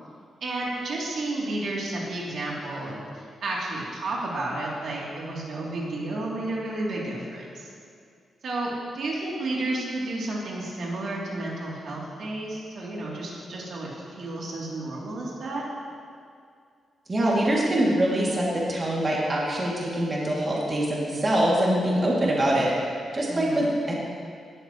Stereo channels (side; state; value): both; normal; correlation 0.87